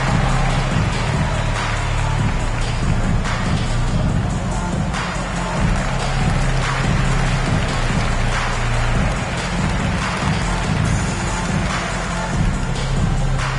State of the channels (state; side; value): identical; both; correlation 1.00